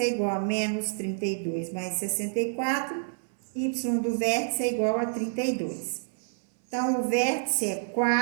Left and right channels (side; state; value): left; silent; 59 dB below the other